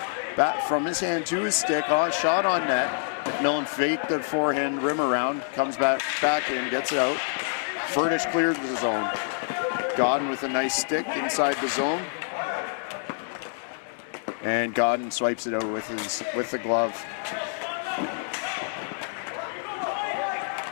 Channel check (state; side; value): silent; right; digital silence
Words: Back from his hand to his stick. Oh, shot on net. McMillan faked the forehand rim around, comes back in, gets it out. Furnish clears the zone. Godden with a nice stick inside the zone. And Godden swipes it out with the glove.